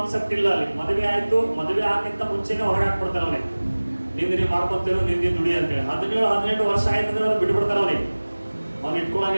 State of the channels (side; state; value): both; inverted; correlation -1.00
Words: ಇಲ್ಲ. ಅಲ್ಲಿ ಮದುವೆ ಆಯ್ತು, ಮದುವೆ ಆಗಿಂತ ಮುಂಚೆನೆ ಹೊರಗೆ ಹಾಕ್ಬಿಡ್ತಾರೆ ಅವನಿಗೆ. ನಿಂದಿನಿ ಮಾಡ್ಕೊಂತೀರೋ, ನಿಂದಿನ ದುಡಿ ಅಂತೇಳಿ. 17-18 ವರ್ಷ ಆಯ್ತಂದ್ರೆ ಅವ್ರು ಬಿಟ್ಬಿಡ್ತಾರೆ ಅವನಿಗೆ. ಅವ್ನು